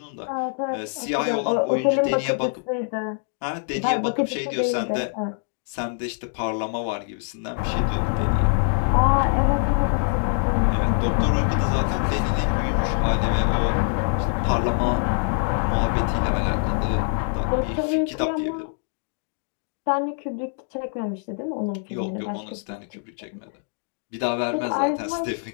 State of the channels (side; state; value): right; silent; 59 dB below the other